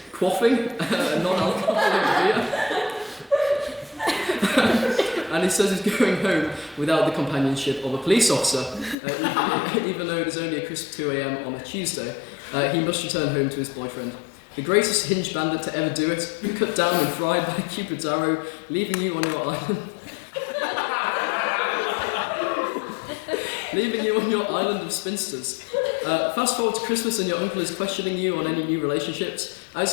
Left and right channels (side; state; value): right; drops out; at 9.0 s